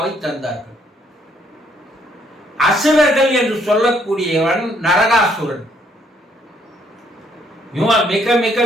தந்தார்கள். அசுரர்கள் என்று சொல்லக்கூடியவன் நரகாசுரன். இவன் மிக மிக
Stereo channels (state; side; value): normal; both; correlation 0.68